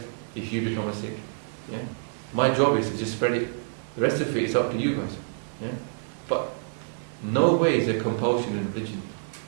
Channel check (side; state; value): left; silent; 60 dB below the other